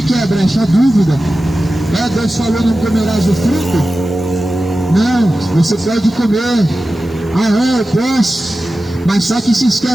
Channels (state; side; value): noise; left; hiss, 28 dB below the sound